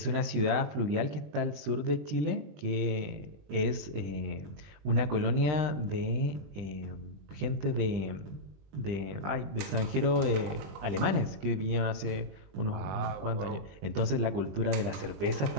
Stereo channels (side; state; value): left; late; 20 ms